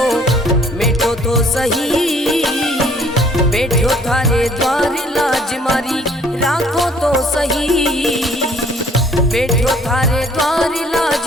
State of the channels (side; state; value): both; normal; correlation 0.59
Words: मिटो तो सही, बैठो थारे द्वार लाज मारी राखो तो सही, बैठो थारे द्वार लाज